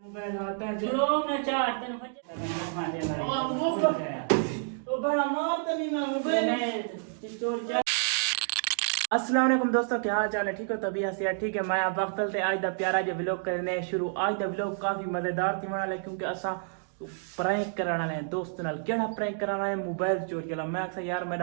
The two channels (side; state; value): left; silent; digital silence